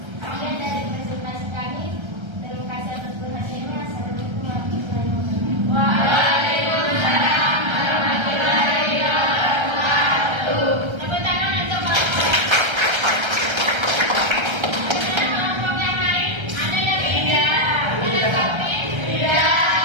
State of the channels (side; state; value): left; late; 1.3 ms